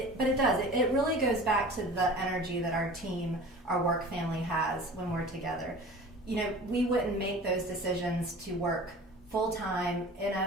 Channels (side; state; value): both; normal; correlation 0.40